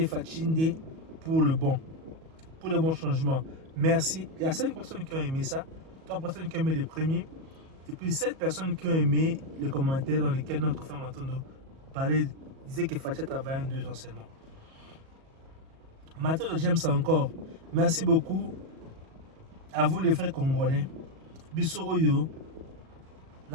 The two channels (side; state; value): left; late; 37 ms